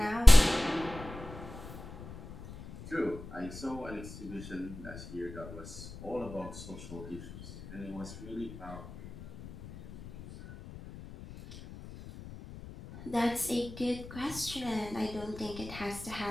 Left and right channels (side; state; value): left; noise; rumble, 14 dB below the sound